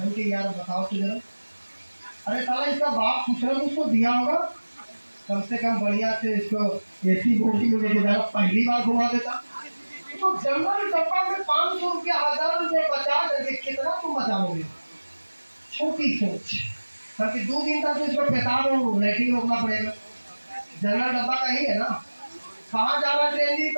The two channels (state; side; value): inverted; both; correlation -1.00